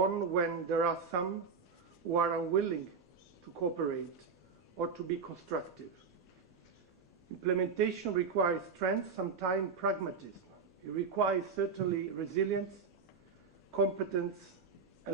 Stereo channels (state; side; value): quieter; left; 5.3 dB